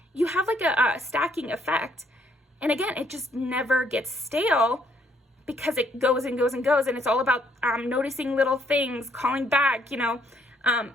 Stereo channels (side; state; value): both; normal; correlation 0.69